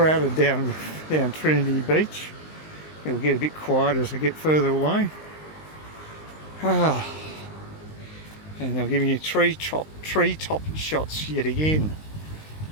down Trinity Beach. It'll get a bit quiet as I get further away. And they're giving you treetop shots yet again.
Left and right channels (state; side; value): late; right; 19 ms